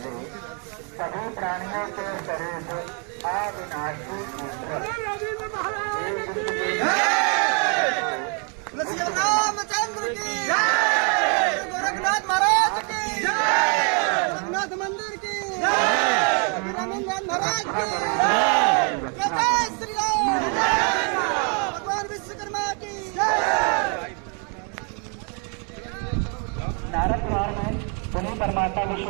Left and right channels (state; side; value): quieter; left; 38.0 dB